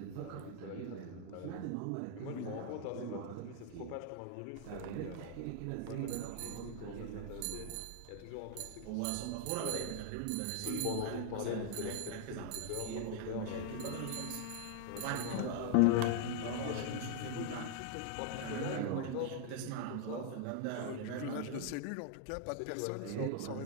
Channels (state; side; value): different; both; correlation 0.00